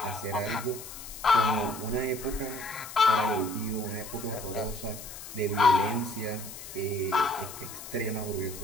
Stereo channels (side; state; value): left; noise; hiss, 12 dB below the sound